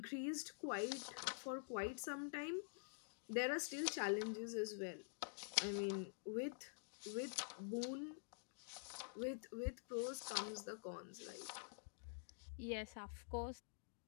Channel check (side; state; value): right; silent; digital silence